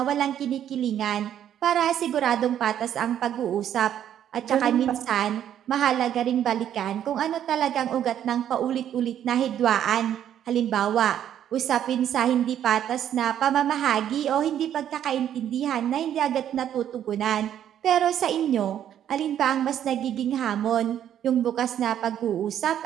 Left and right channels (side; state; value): left; quieter; 10.3 dB